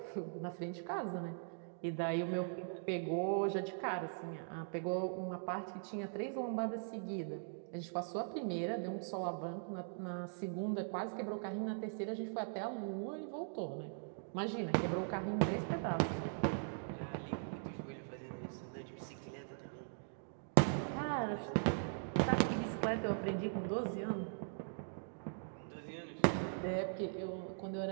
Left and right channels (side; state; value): left; silent; digital silence